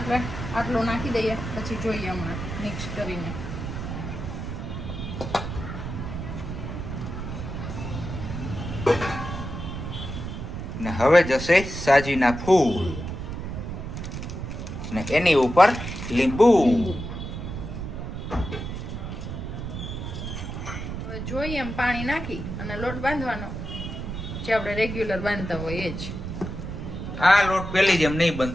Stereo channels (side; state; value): right; noise; rumble, 6 dB below the sound